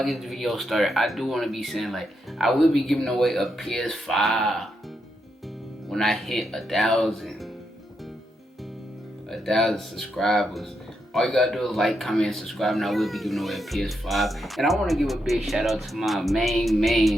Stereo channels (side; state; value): both; normal; correlation 0.82